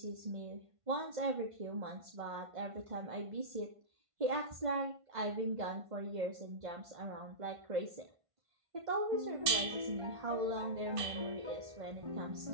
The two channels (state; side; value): late; left; 1.5 ms